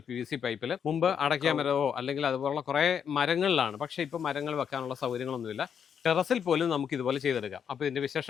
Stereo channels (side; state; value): right; quieter; 7.7 dB